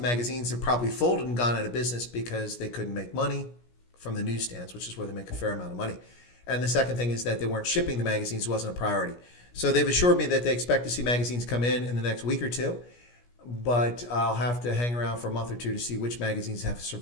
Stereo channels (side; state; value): right; late; 17 ms